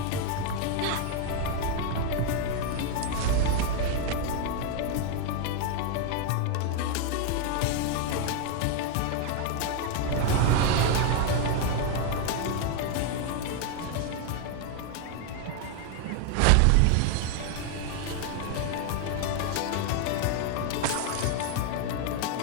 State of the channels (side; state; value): both; different; correlation 0.01